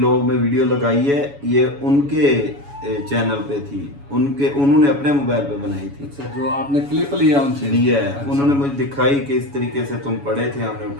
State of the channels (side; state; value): left; late; 7.1 ms